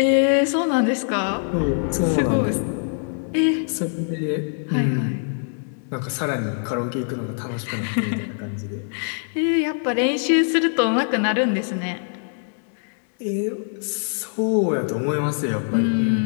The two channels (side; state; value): right; silent; digital silence